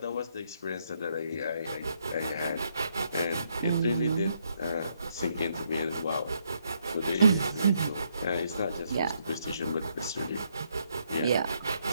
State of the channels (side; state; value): both; inverted; correlation -0.74